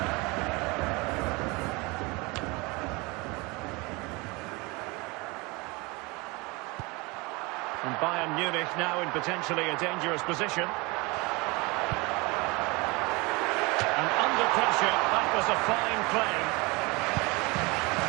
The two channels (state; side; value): quieter; left; 25.8 dB